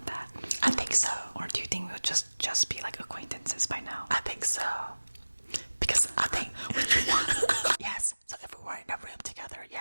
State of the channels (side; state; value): both; inverted; correlation -1.00